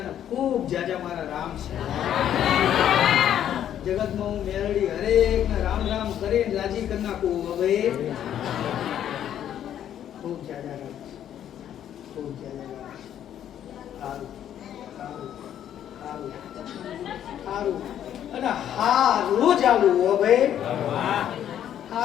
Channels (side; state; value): right; quieter; 10.4 dB